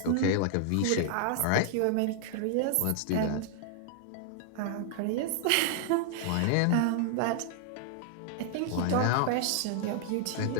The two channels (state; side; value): different; both; correlation 0.00